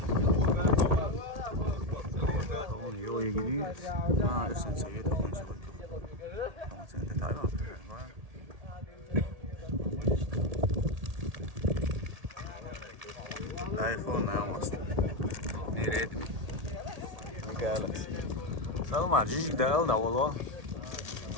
Oğlum yola gidiyoruz. Ha, sen sayıda konuşalım. Ama sen de Tayvan. iPhone ne yapmasın? Nereye mi? Galaxy. Salma, cicik de aldı valla.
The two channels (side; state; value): left; late; 1.8 ms